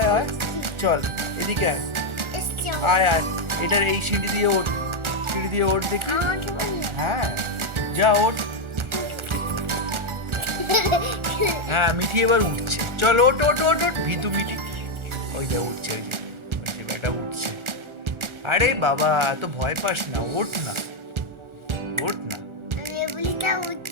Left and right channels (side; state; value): left; late; 1.4 ms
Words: চল এদিকে আয়। এটার এই সিঁড়ি দিয়ে ওঠ দেখি। হ্যাঁ, যা ওঠ। হ্যাঁ, মিঠি এবার উঠছে। চল, ওঠ। ভীতু মিঠি, ওই দেখ উঠছে, ওই যে বেটা উঠছে। আরে বাবা, এত ভয় পাস না, ওঠ না।